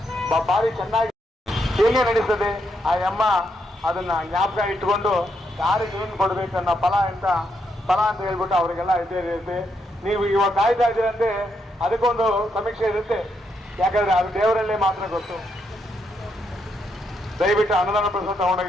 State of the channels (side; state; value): both; normal; correlation 0.79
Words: ಭಾರಿ ಚೆನ್ನಾಗಿ ಹೇಗೆ ನಡೀತದೆ. ಆ ಅಮ್ಮ ಅದನ್ನ ಜ್ಞಾಪಕ ಇಟ್ಕೊಂಡು ಯಾರಿಗೆ ಏನು ಕೊಡ್ಬೇಕು ಅನ್ನೋ ಫಲ ಅಂತ ಹೇಳ್ಬಿಟ್ಟು ಅವರಿಗೆಲ್ಲ ಇರುತ್ತೆ. ನೀವು ಇವಾಗ ಕಾಯ್ತಾ ಇದ್ದೀರಂತೆ, ಅದಕ್ಕೊಂದು ಸಮೀಕ್ಷೆ ಇರುತ್ತೆ. ಯಾಕಂದ್ರೆ ಅದು ದೇವರಲ್ಲೇ ಮಾತ್ರ ಗೊತ್ತು. ದಯವಿಟ್ಟು ಅನ್ನದಾನ ಪ್ರಸಾದ